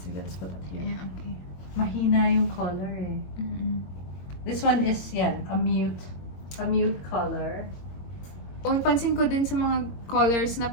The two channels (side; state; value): right; late; 22 ms